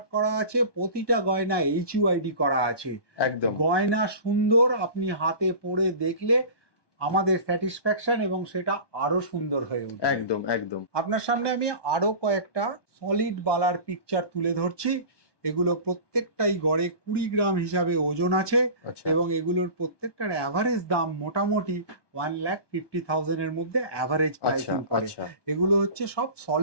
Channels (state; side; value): late; right; 1.2 ms